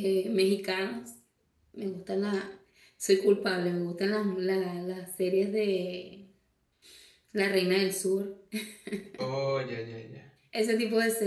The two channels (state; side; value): identical; both; correlation 1.00